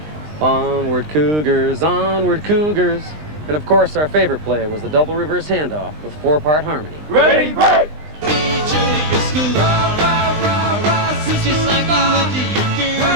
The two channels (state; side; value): late; left; 20 ms